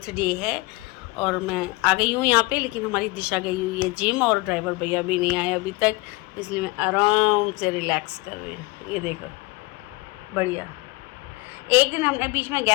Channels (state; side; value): quieter; right; 23.5 dB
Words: डे है और मैं आ गई हूँ यहाँ पे। लेकिन हमारी दिशा गई हुई है जिम और ड्राइवर भैया भी नहीं आए अभी तक, इसलिए मैं आराम से रिलैक्स कर रही हूँ। ये देखो, बढ़िया। एक दिन हमने बीच में